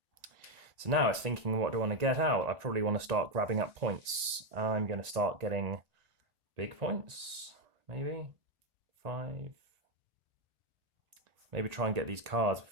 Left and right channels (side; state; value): left; late; 1.9 ms